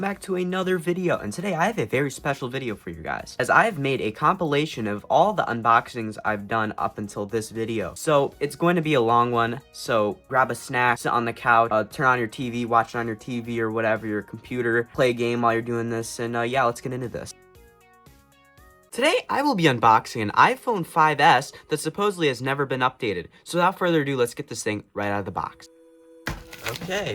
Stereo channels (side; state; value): both; identical; correlation 1.00